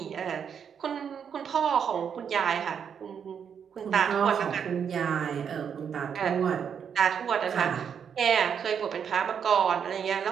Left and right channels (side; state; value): left; quieter; 7.5 dB